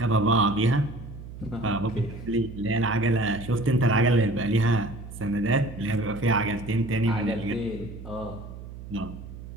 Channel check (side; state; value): right; noise; hum, 13 dB below the sound